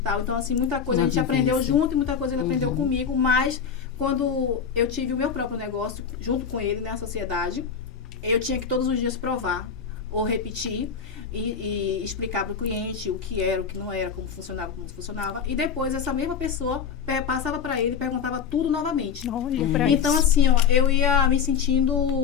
Então, assim, muita coisa a gente aprendeu junto e muita coisa ele aprendeu comigo. Mas, quando eu tive o meu próprio negócio, junto com ele, né, a sociedade, eu tinha que todos os dias provar ou repetir e explicar para o cliente o que era, o que não era, como funcionava. E depois essa mesma pessoa passava para ele e perguntava tudo novamente. Olha pra Então, isso. assim, ó, eu ia me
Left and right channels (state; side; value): quieter; right; 6.9 dB